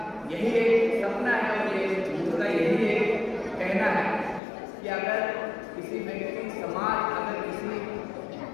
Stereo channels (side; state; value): right; drops out; at 4.4 s